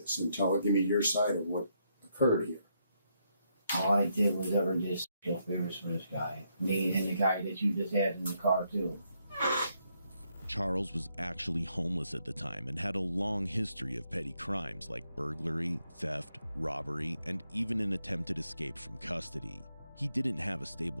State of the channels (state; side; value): inverted; both; correlation -0.77